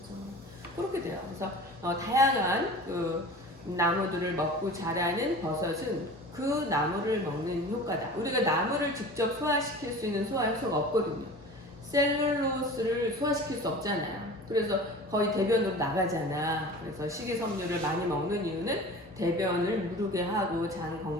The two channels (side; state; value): both; normal; correlation 0.38